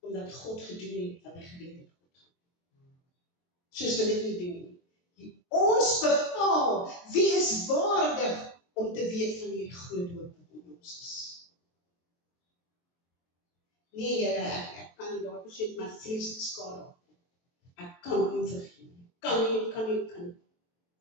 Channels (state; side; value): late; right; 23 ms